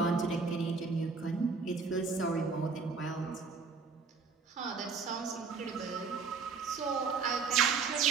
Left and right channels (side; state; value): left; quieter; 4.9 dB